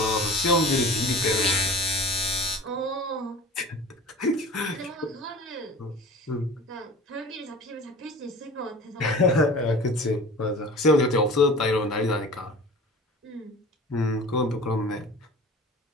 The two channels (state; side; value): normal; both; correlation 0.40